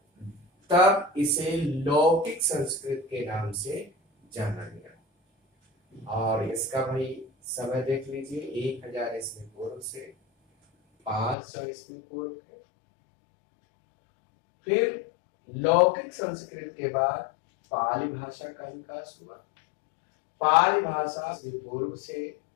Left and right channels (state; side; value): drops out; right; at 11.4 s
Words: तब इसे लौकिक संस्कृत के नाम से जाना गया और इसका भाई समय देख लीजिए, 1000 ईस्वी पूर्व से 500 ईस्वी पूर्व है। फिर लौकिक संस्कृत के बाद पाली भाषा का विकास हुआ। पाली भाषा पूर्व से